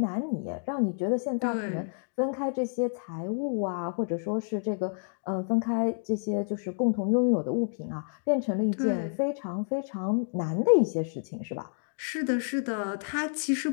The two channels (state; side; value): silent; right; digital silence